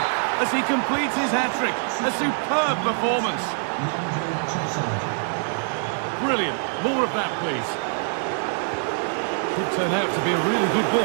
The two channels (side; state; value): left; silent; 55 dB below the other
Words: as he completes his hat-trick. A superb performance. Brilliant. More of that, please. Could turn out to be a really good